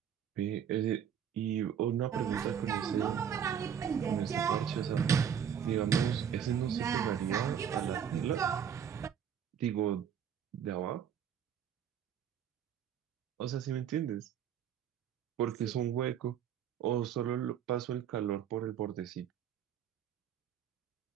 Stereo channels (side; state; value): left; quieter; 8.5 dB